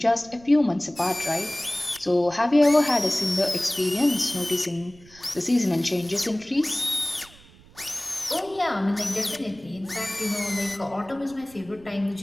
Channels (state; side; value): noise; right; rumble, 24 dB below the sound